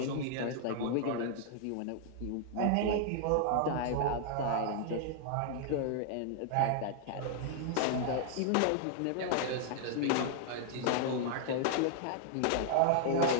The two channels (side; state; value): both; different; correlation -0.01